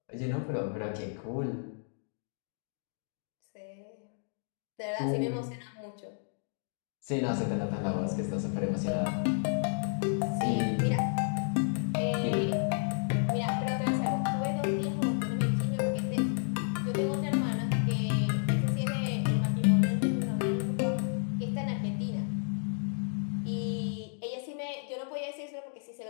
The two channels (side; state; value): right; silent; digital silence